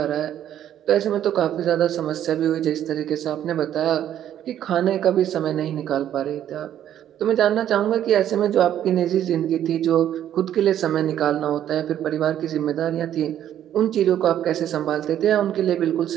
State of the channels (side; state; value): left; quieter; 10.9 dB